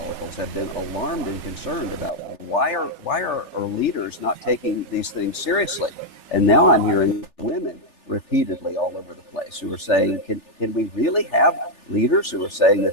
have been alarmed and concerned about why are our leaders not taking these things seriously. And now I'm hearing women repeatedly all over the place who are saying, can we really have leaders who are saying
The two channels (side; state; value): right; late; 3.4 ms